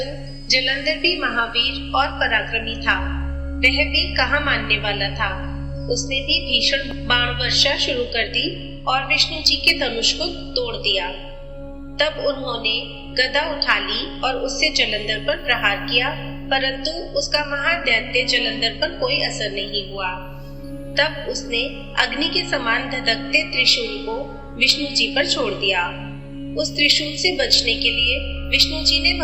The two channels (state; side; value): identical; both; correlation 1.00